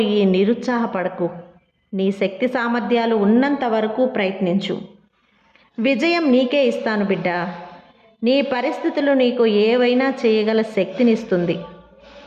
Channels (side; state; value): both; identical; correlation 1.00